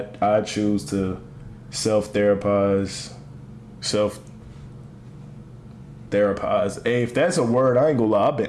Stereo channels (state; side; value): identical; both; correlation 1.00